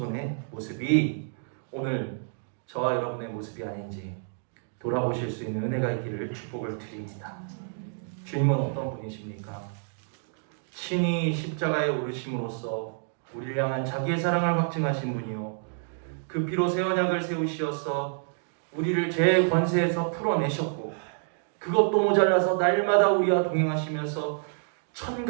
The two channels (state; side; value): silent; left; digital silence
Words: 모습이 오늘 저와 여러분의 모습이 아닌지 돌아보실 수 있는 은혜가 있기를 축복을 드립니다. 주님은 어떤 분이십니까? 친히 십자가에 오르심으로써 우리를 향한 자기의 사랑을 확증하신 분이요, 그 피로 새 언약을 세우시어서 우리를 죄의 권세에서 풀어내셨고, 그것도 모자라서 날마다 우리와 동행하시면서